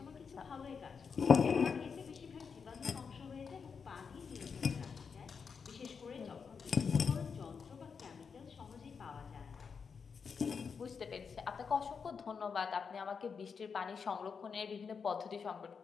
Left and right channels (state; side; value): quieter; right; 5.9 dB